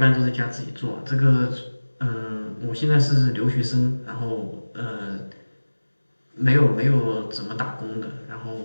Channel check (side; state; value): both; inverted; correlation -1.00